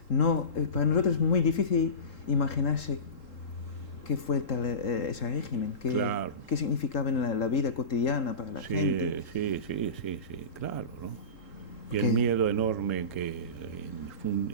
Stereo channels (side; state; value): right; late; 3.8 ms